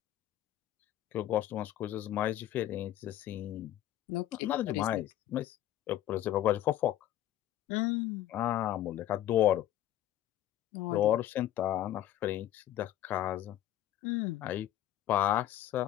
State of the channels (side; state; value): right; quieter; 12.7 dB